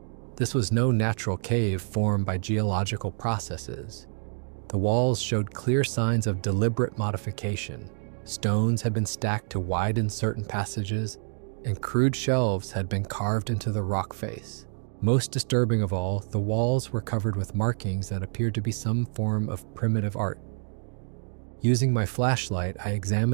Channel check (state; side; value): silent; left; 60 dB below the other